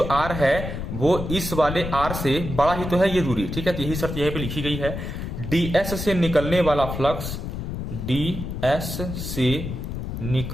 R है वो इस वाले R से बड़ा ही तो है ये दूरी, ठीक है, तो यही शर्त यहीं पे लिखी गई है। ds से निकलने वाला फ्लक्स, ds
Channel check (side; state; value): left; noise; rumble, 5 dB below the sound